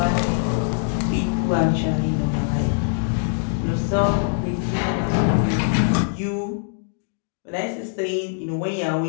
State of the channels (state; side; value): silent; right; digital silence